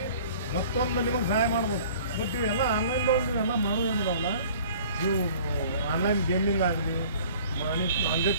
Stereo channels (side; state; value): both; inverted; correlation -0.49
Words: ಮತ್ತೊಂದು ನಿಮಗೆ ಸಹಾಯ ಮಾಡ್ಬೋದು. ಬಟ್ ಇವೆಲ್ಲ ಆನ್ಲೈನ್ದವ್ರು ನೀವೆಲ್ಲ ಮಾಡೋದೇನಿದಾವಲ್ಲ, ನೀವು ಆನ್ಲೈನ್ ಗೇಮಿಂಗ್ ಆಗಲಿ ಮನಿ